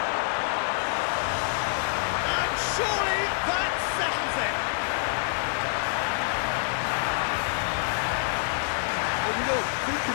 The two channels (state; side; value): silent; right; digital silence